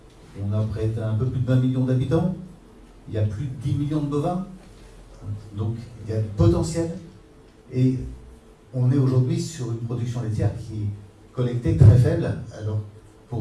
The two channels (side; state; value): both; identical; correlation 1.00